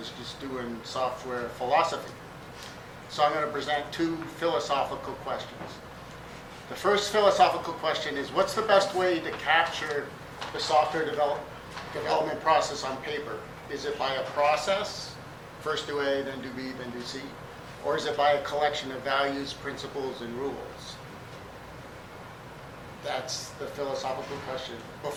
just doing software philosophy. So I'm going to present two philosophical questions. The first philosophical question is, what's the best way to capture the software development process on paper? Is it by a process, first do A, then do B, then do C? Or is it by a collection of values, principles, and rules? That's the philosophical question.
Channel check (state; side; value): identical; both; correlation 1.00